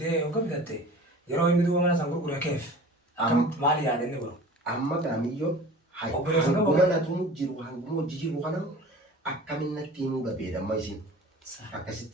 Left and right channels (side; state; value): both; normal; correlation 0.41